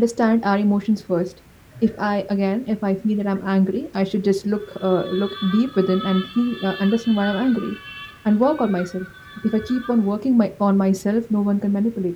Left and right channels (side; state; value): both; identical; correlation 1.00